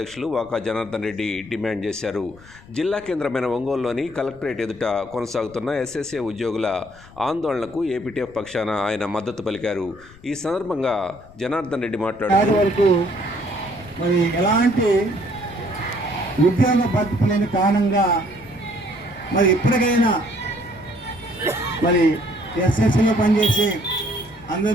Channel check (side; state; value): left; noise; rumble, 23 dB below the sound